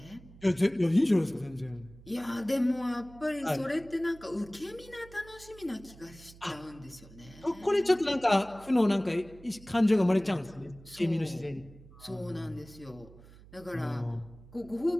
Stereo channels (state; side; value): noise; right; hum, 21 dB below the sound